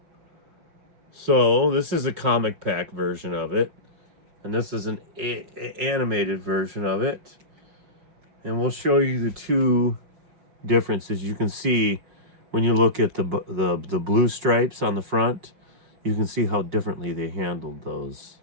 So, this is a comic pack version of it. And this is an animated version of it. And we'll show you the two differences. You can see when you look at the blue stripes on the front, you can see how differently they handled those.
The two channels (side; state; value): left; late; 5.6 ms